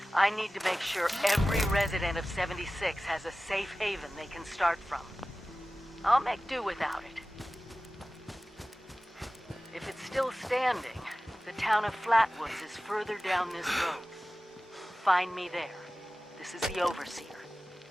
I need to make sure every resident of 76 has a safe haven they can start from. I'll make do without it. If it's still standing, the town of Flatwoods is further down this road. Find me there. This is the Overseer,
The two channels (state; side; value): normal; both; correlation 0.96